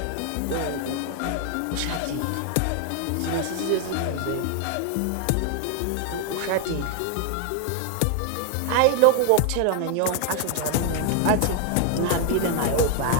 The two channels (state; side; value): different; both; correlation 0.00